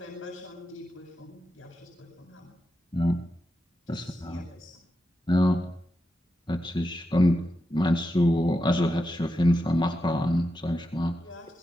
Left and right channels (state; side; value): normal; both; correlation 0.88